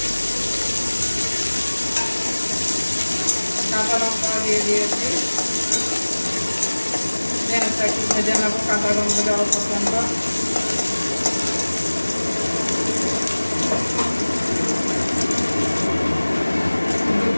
কাঁচা লঙ্কা দিয়ে দিয়েছি। পেঁয়াজটা একটু ভেজে নেবো, কাঁচা গন্ধ যাওয়া পর্যন্ত।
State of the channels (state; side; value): inverted; both; correlation -1.00